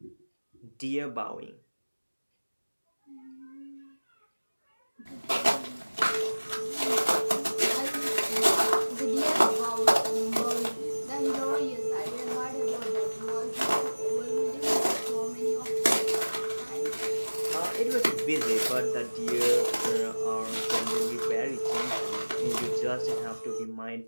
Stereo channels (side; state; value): both; inverted; correlation -1.00